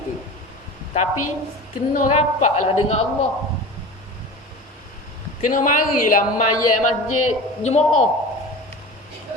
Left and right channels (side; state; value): both; normal; correlation 0.34